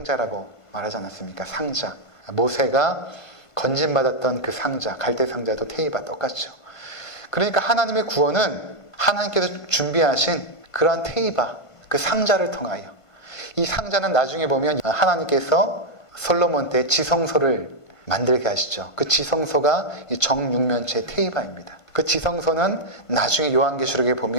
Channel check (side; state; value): right; late; 1.5 ms